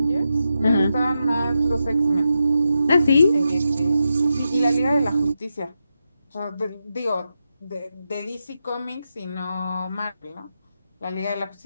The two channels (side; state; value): both; inverted; correlation -0.87